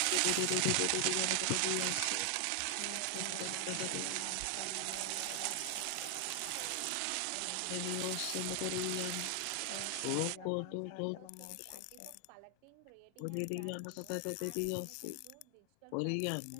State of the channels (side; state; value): both; different; correlation 0.00